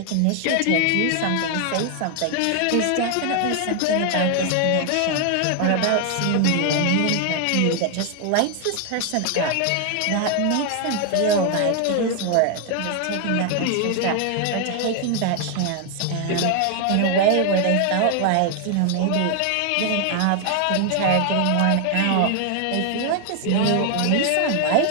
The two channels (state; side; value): different; both; correlation 0.00